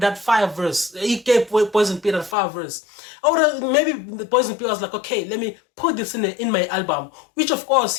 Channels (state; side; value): drops out; right; at 2.4 s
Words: fire verse, he gave Poison P that fire verse. I would have, maybe the Poison P was like, okay, let me put this in my album, which of course